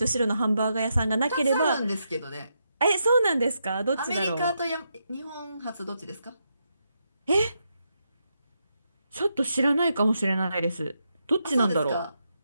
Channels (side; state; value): both; inverted; correlation -0.83